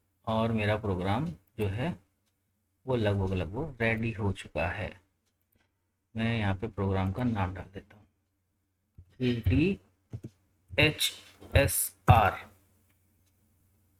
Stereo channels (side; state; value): both; identical; correlation 1.00